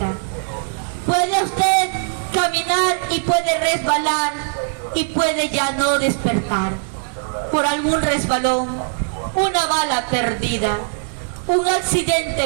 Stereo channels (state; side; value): silent; left; 59 dB below the other